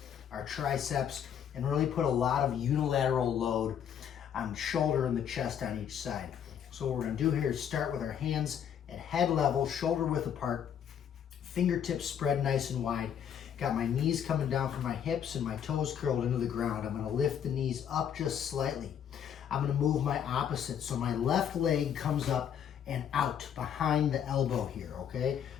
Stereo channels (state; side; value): quieter; right; 8.7 dB